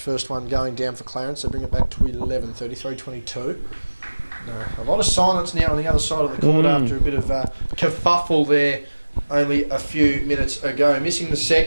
first one going down for Clarence. They bring it back to 11, 33-22. No, a lot of silence now on the other side of the court after a bit of kerfuffle there only a few minutes ago. Missing the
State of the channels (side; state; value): both; inverted; correlation -1.00